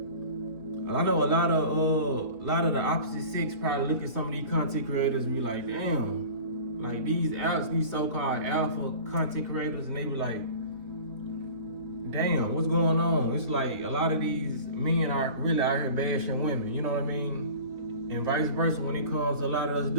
the opposite sex probably look at some of these content creators and be like, damn, like these so-called alpha content creators, and they be like, damn, what's going on? It's like a lot of these men are really out here bashing women, you know what I mean? And vice versa, when it comes to a lot of us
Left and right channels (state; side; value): late; left; 3.4 ms